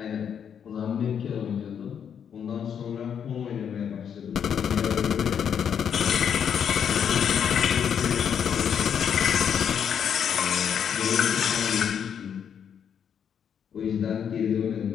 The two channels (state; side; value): quieter; right; 8.0 dB